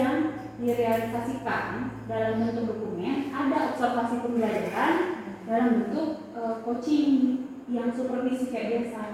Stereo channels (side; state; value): both; identical; correlation 1.00